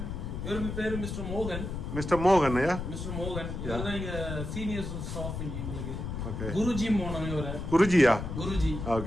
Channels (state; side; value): noise; left; rumble, 5 dB below the sound